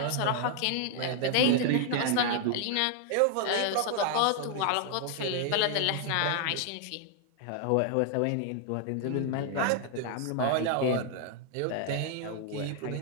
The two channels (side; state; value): both; different; correlation 0.00